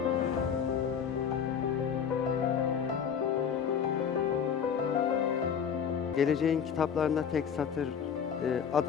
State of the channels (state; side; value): quieter; right; 7.5 dB